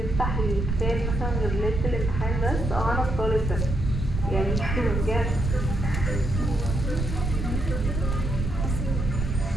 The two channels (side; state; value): right; noise; rumble, 2 dB below the sound